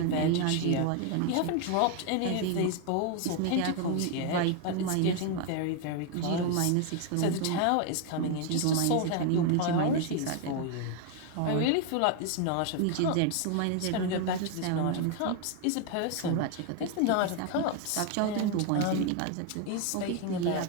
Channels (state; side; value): different; both; correlation 0.01